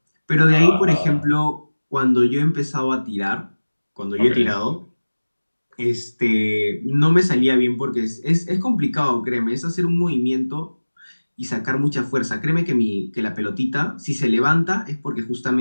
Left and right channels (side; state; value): both; inverted; correlation -1.00